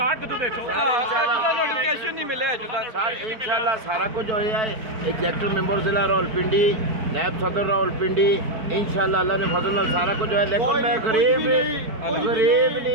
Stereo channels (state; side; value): late; left; 4.5 ms